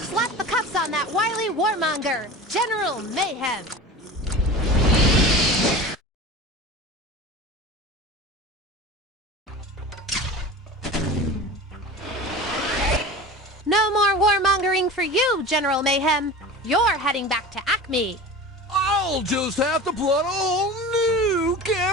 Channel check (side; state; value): both; normal; correlation 0.34